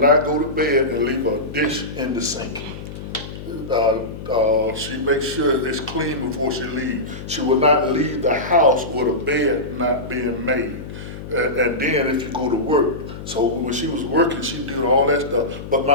go to bed and leave a dish in the sink. She makes sure it's clean before she leaves. She will not leave the house with a bed not being made. And then if you go to work, so when she was working, she did all that stuff. But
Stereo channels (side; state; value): left; noise; hum, 11 dB below the sound